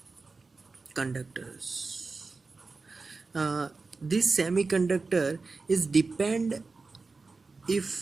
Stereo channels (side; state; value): left; quieter; 4.0 dB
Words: conductors. This semiconductor is depend